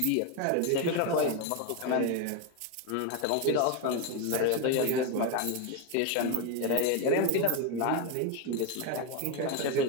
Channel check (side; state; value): both; different; correlation 0.02